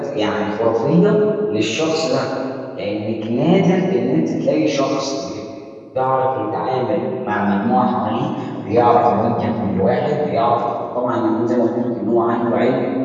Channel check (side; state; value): both; identical; correlation 1.00